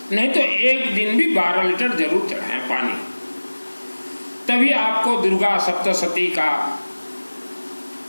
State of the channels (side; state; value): both; inverted; correlation -1.00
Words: नहीं तो एक दिन भी 12 लीटर जरूर चढ़ाएं पानी। तभी आपको दुर्गा सप्तशती का